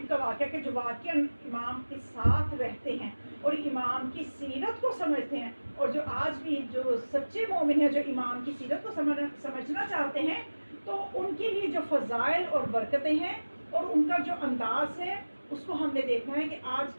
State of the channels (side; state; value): both; inverted; correlation -1.00